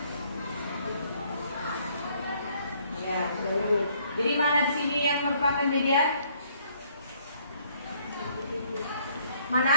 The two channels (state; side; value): inverted; both; correlation -0.65